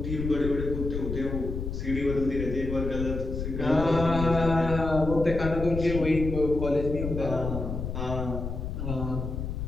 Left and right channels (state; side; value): noise; left; rumble, 5 dB below the sound